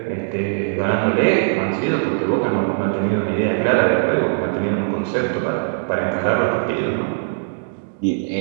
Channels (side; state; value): left; silent; digital silence